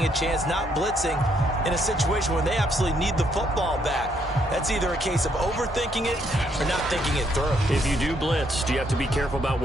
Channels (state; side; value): normal; both; correlation 0.72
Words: a chance, not blitzing in a situation where they absolutely need the football back. That's either a case of overthinking it or not thinking it through. If you do blitz, do you have to be careful about